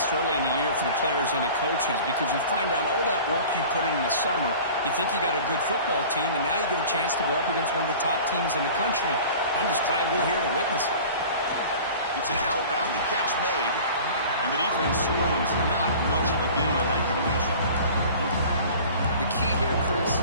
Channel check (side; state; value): both; inverted; correlation -0.42